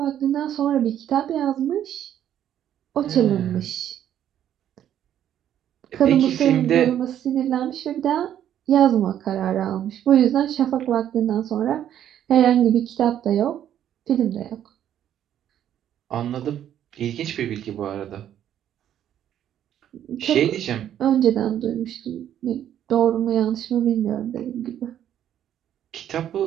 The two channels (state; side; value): quieter; left; 10.6 dB